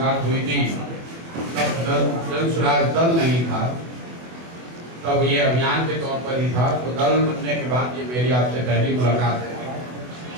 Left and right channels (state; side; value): late; left; 24 ms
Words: हुई थी तब जनसुराज दल नहीं था, तब ये अभियान के तौर पर ही था। तो दल बनने के बाद ये मेरी आपसे पहली मुलाकात है।